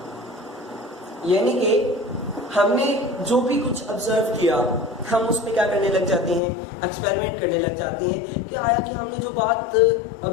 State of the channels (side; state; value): right; drops out; at 6.4 s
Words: यानी कि हमने जो भी कुछ ऑब्जर्व किया हम उसमें क्या करने लग जाते हैं, एक्सपेरिमेंट करने लग जाते हैं कि आया कि हमने जो बात